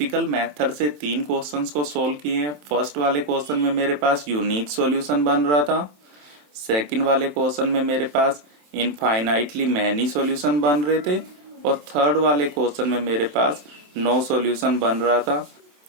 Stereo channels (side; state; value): left; late; 27 ms